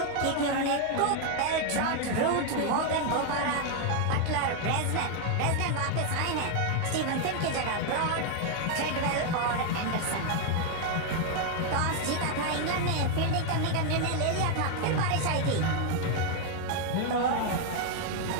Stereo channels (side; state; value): both; different; correlation 0.00